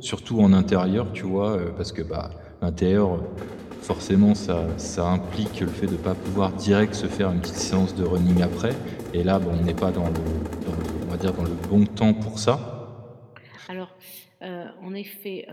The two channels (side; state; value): both; identical; correlation 1.00